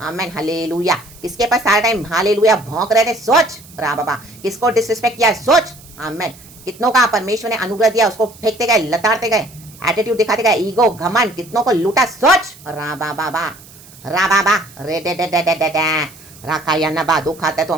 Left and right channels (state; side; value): noise; right; hiss, 22 dB below the sound